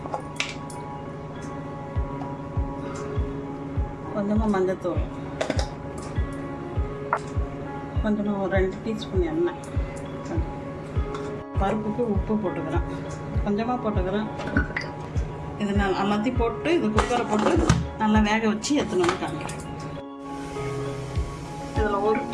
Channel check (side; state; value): both; identical; correlation 1.00